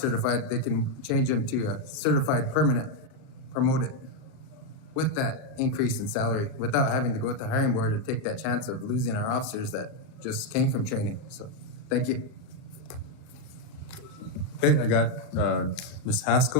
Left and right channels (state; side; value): late; right; 38 ms